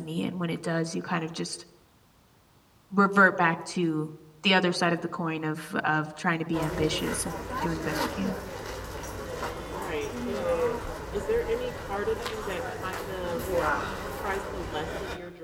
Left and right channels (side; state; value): both; identical; correlation 1.00